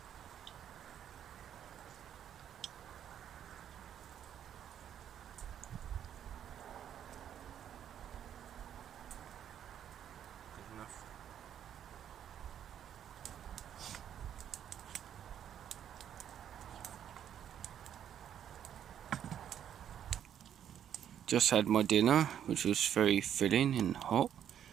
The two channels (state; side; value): quieter; left; 9.7 dB